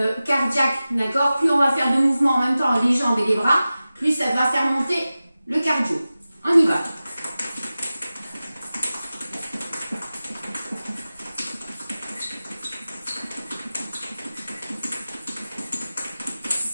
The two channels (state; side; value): inverted; both; correlation -0.95